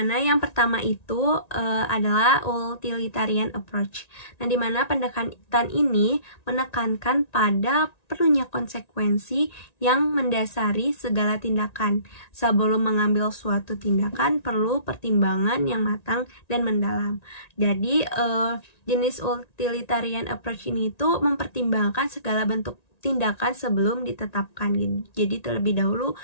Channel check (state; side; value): late; right; 1.9 ms